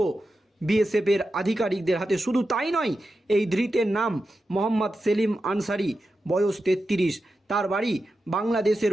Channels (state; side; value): normal; both; correlation 0.90